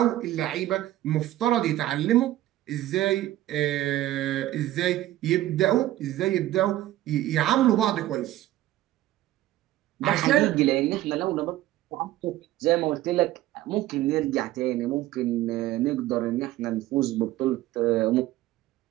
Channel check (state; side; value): quieter; left; 15.0 dB